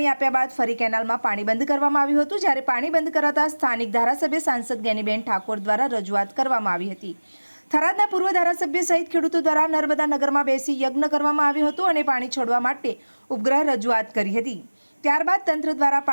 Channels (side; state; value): both; inverted; correlation -1.00